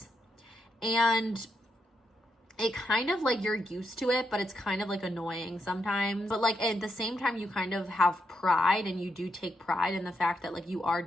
And it kind of like you're used to it, but it's kind of like annoying sometimes. But like at the same time, you kind of have pride, and you do take pride in the fact that like you are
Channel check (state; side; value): normal; both; correlation 0.81